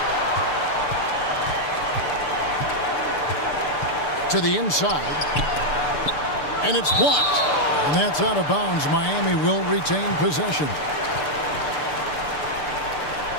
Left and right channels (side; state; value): right; late; 6.8 ms